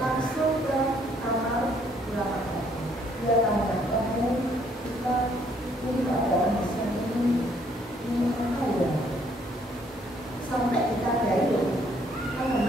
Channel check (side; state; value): both; normal; correlation 0.66